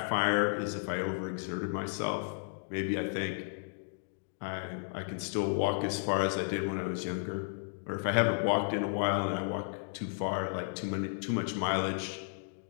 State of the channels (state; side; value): silent; right; digital silence